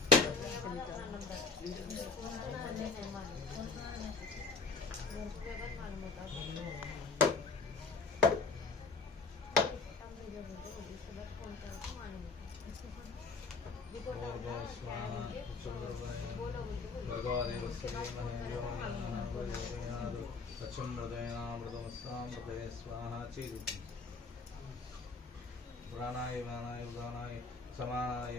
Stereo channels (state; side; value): quieter; right; 4.4 dB